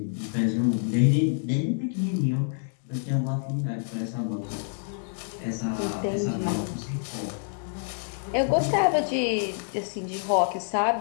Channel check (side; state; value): right; silent; digital silence